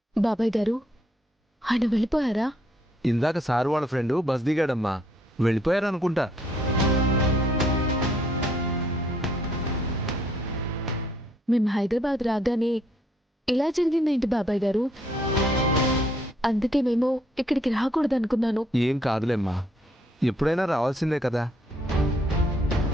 బాబాయ్ గారు, ఆయన వెళ్ళిపోయారా? ఇందాక సారు వాళ్ళ ఫ్రెండ్ బస్ దిగాడమ్మా, వెళ్ళిపోయారనుకుంటా. మేము హైదరాబాద్ రాగానే ఇలా జరిగిందేంటి బాబాయ్ గారు? అందుకే మేము ఇక్కడికి రాకూడదు అనుకున్నాను. ఏం కాదులేమ్మా, ఎప్పుడైనా రావాల్సిందే కదా.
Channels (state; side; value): normal; both; correlation 0.68